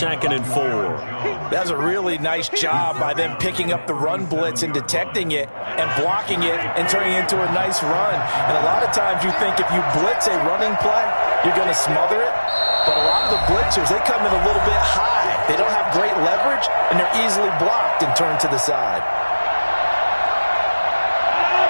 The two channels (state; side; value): inverted; both; correlation -1.00